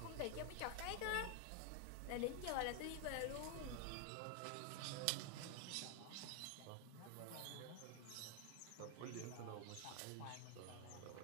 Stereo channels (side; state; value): both; different; correlation 0.01